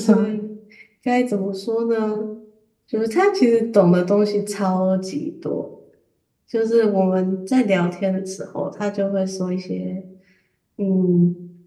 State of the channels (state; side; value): identical; both; correlation 1.00